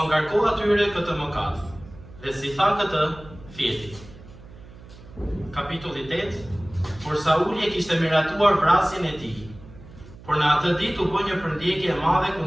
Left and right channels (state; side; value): noise; right; hum, 19 dB below the sound